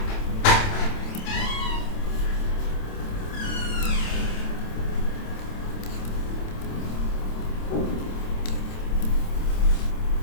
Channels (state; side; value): late; right; 27 ms